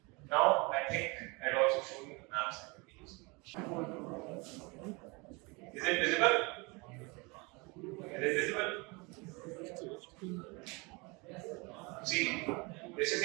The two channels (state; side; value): quieter; left; 27.6 dB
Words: Now I think I'll also show you the maps that we use. Is it visible? Is it visible? See, this is